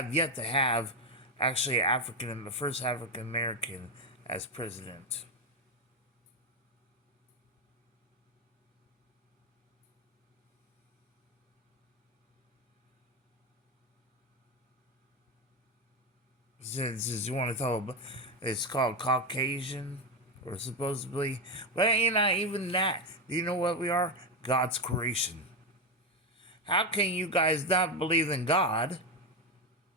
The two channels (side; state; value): both; normal; correlation 0.09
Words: yet to have actually the first African American as president. Since you want to talk about, it's called Caucasian, We're supposedly, but not even that. Do you know what we are? God's creation. How can you guys not believe in God,